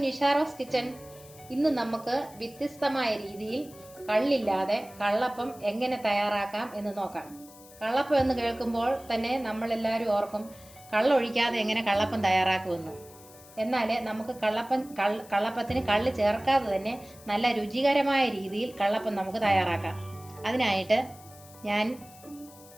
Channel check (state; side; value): noise; left; hiss, 22 dB below the sound